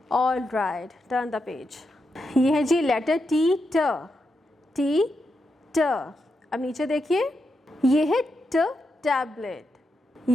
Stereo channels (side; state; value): both; normal; correlation 0.85